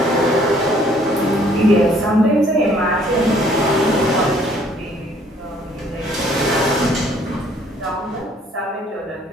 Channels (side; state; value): both; normal; correlation 0.61